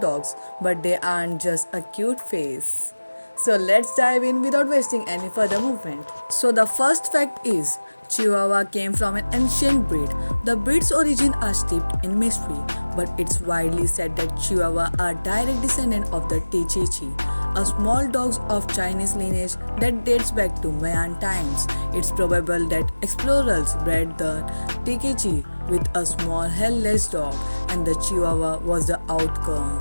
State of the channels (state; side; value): inverted; both; correlation -1.00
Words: but they aren't just a cute face. So let's dive in without wasting any further movement. So the first fact is Chihuahua came from an ancient breed. The breed's origin are steeped in mystery, but it's widely said that Chihuahua are direct descendant of the Tichichi, a small dog of Chinese lineage that dates back to Mayan times. It's probable that explorers bred the Tikichi with a small hairless dog, and the Chihuahua was the